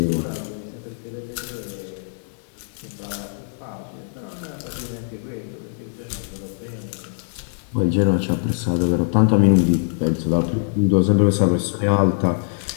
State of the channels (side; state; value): right; silent; 62 dB below the other